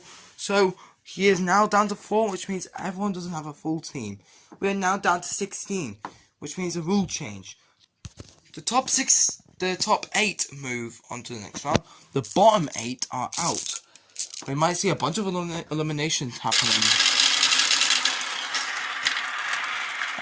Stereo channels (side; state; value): both; identical; correlation 1.00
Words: so he is now down to 4, which means everyone doesn't have a full team. We are now down to 16, which means a rule change. The top 8 move on to the next round. The bottom 8 are out. We might see a bunch of eliminations happening.